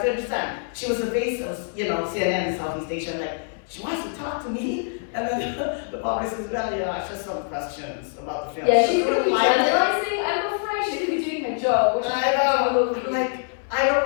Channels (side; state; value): right; silent; 62 dB below the other